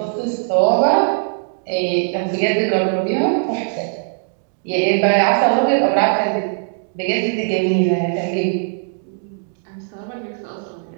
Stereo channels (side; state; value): left; silent; 62 dB below the other